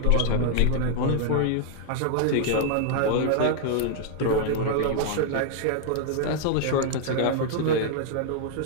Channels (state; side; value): different; both; correlation -0.01